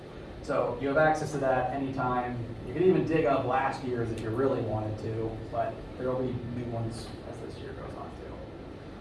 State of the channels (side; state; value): both; identical; correlation 1.00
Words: So you have access to that anytime. You can even dig up last year's if you really wanted to, but there will be new ones as this year goes on